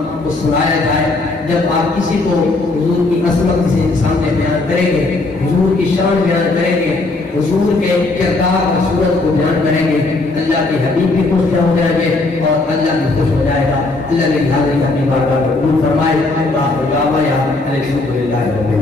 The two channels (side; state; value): right; quieter; 3.2 dB